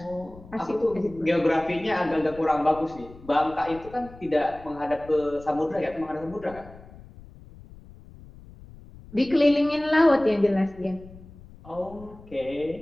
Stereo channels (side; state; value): left; noise; rumble, 20 dB below the sound